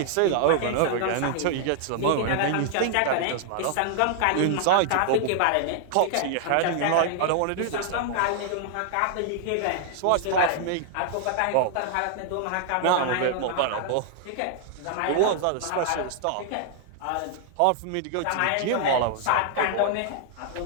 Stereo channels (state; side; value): different; both; correlation -0.01